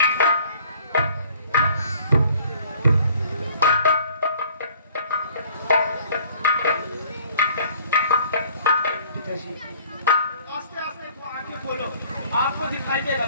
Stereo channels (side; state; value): both; inverted; correlation -0.55